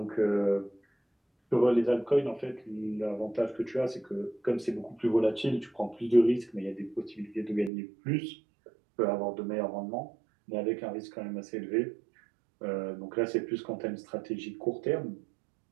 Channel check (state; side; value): drops out; left; at 7.7 s